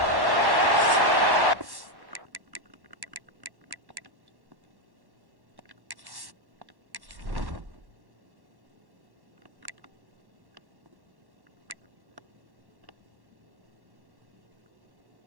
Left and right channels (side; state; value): left; late; 1.1 ms